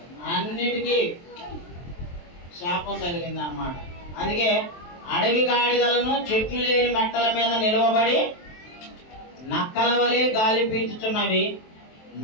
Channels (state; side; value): late; right; 23 ms